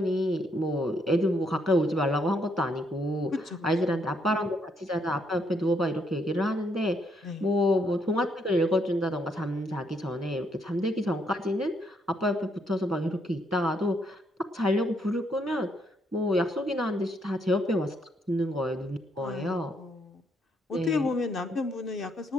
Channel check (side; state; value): both; normal; correlation 0.73